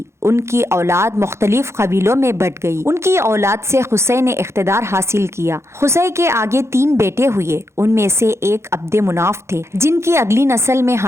ان کی اولاد مختلف قبیلوں میں بٹ گئی۔ ان کی اولاد سے قصی نے اقتدار حاصل کیا۔ قصی کے آگے 3 بیٹے ہوئے، ان میں سے ایک عبد مناف تھے، جن کی اگلی نسل میں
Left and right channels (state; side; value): late; left; 0.13 ms